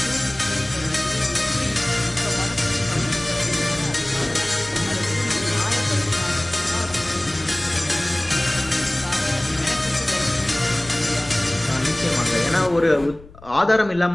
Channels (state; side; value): noise; left; rumble, 21 dB below the sound